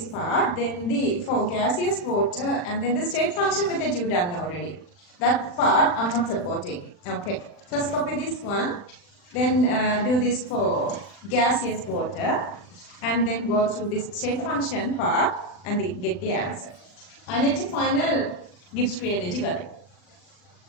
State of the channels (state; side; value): late; right; 40 ms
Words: part. Then for gaseous water and then the state function method you done already. That part I'm not supporting. Okay, first copy this one. Then do this for gaseous water. And then go through this state function part and then get the answer. And it's the final Gibbs free energy value.